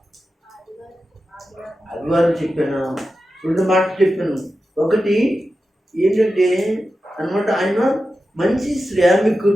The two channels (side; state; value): both; normal; correlation 0.92